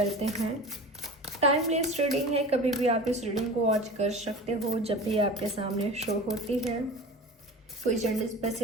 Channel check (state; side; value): normal; both; correlation 0.35